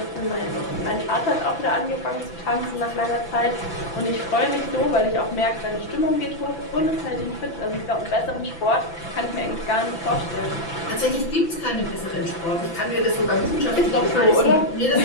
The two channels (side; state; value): right; late; 5.9 ms